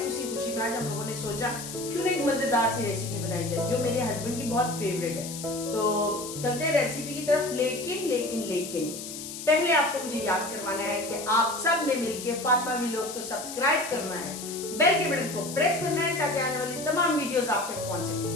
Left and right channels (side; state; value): left; noise; hiss, 9 dB below the sound